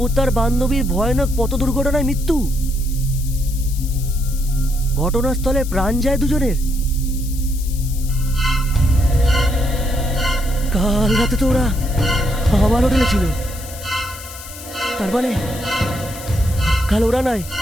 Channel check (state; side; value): noise; left; hiss, 14 dB below the sound